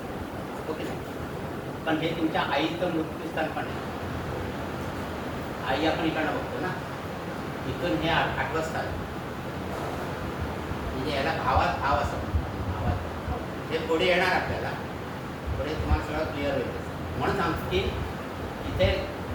हो की नाही? पण हे तुमच्या आईचं मृत्यूस्थान पण आहे. आई आपण इकडनं बघतो ना, इथून हे 8वं स्थान, म्हणजे याला भावात भाव असं म्हणतो. भावात हे पुढे येणार आपल्याला, पुढे तुम्हाला सगळं क्लिअर होईल. म्हणून सांगतो की इथे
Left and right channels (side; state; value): both; identical; correlation 1.00